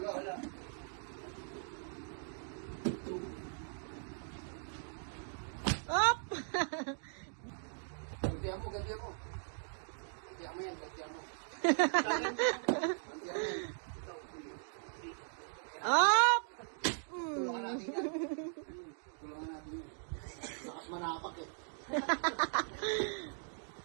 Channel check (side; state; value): left; silent; digital silence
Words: Up! Gantihan mo. Gantihan mo yan. Gantihan mo. Gantihan mo yan. Up! Tulungan natin yan. Tulungan natin yan. Lakas manapak eh.